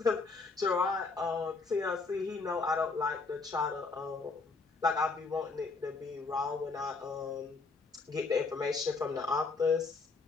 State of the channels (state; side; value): quieter; right; 4.1 dB